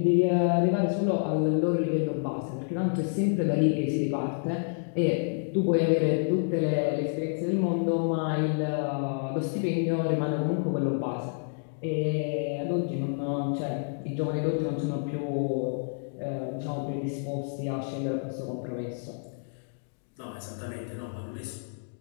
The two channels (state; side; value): silent; right; digital silence